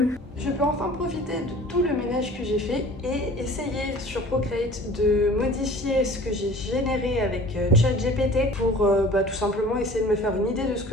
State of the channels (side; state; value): both; normal; correlation 0.45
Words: Je peux enfin profiter de tout le ménage que j'ai fait et essayer sur Procreate de modifier ce que j'ai généré avec ChatGPT pour tout simplement essayer de me faire une idée de ce